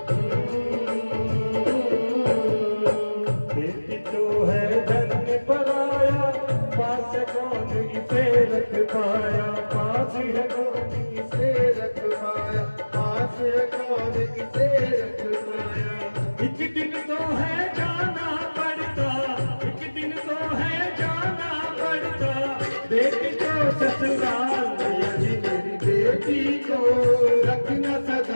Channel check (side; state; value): both; inverted; correlation -1.00